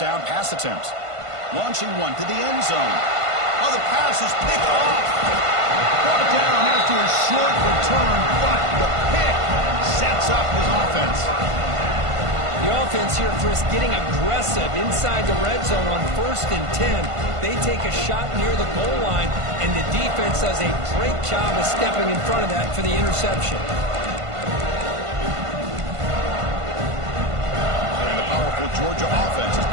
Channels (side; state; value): left; late; 1.5 ms